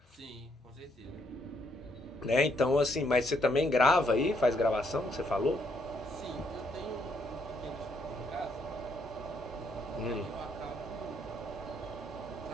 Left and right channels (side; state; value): both; normal; correlation 0.72